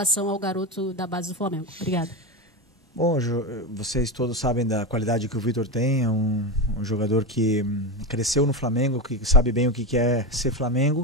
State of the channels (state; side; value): normal; both; correlation 0.16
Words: ao garoto da base do Flamengo? Obrigada. Bom, vocês todos sabem da qualidade que o Vitor tem, é um jogador que cresceu no Flamengo, que sabe bem o que é ser